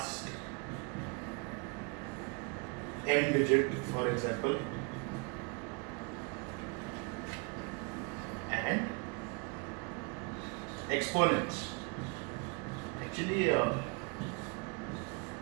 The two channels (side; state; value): left; quieter; 31.5 dB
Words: n digit, for example, and exponents. Actually,